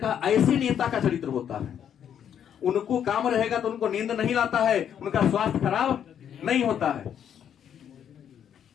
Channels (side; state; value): right; quieter; 9.0 dB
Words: ऐसे नेता का चरित्र होता है, उनको काम रहेगा तो उनको नींद नहीं लाता है, उनका स्वास्थ्य खराब नहीं होता है,